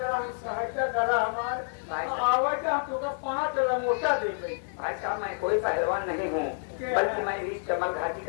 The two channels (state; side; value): silent; right; digital silence